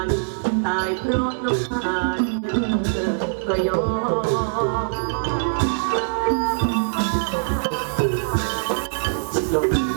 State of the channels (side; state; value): left; silent; 64 dB below the other